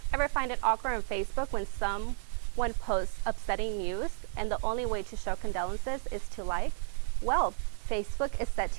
Ever find it awkward on Facebook when someone posts upsetting news and the only way to show condolences is to like? Well, Facebook is set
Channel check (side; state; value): left; silent; digital silence